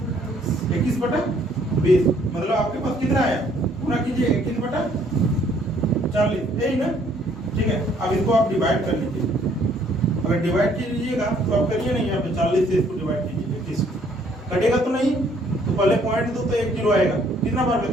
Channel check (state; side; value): normal; both; correlation 0.63